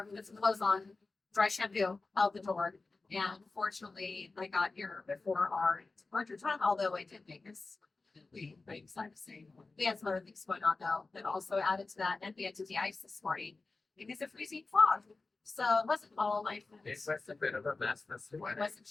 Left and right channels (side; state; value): right; quieter; 3.7 dB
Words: put some clothes on, dry shampoo out the door. And fortunately, I got here before our departure time, although I did make this pretty excited to say. We had some other things going on though that also added to that. And we had to de-ice this morning because of freezing fog. So it wasn't all my fault. It was a bit of a mess this It morning. wasn't